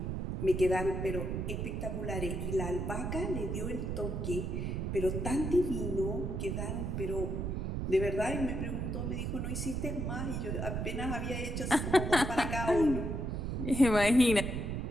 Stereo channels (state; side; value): noise; right; rumble, 2 dB below the sound